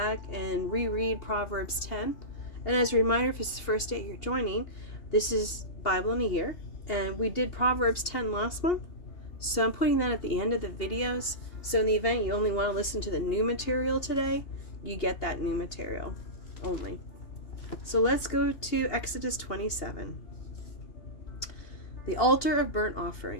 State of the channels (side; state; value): right; late; 2.8 ms